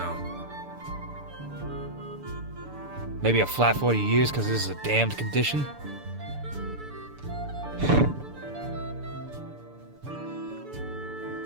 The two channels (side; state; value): left; late; 6.9 ms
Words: Maybe a flat 40 years because this is a damned condition?